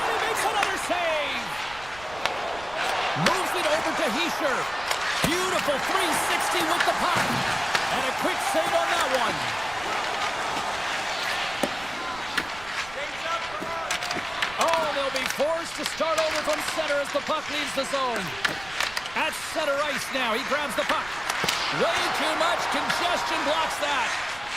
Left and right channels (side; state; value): right; noise; rumble, 18 dB below the sound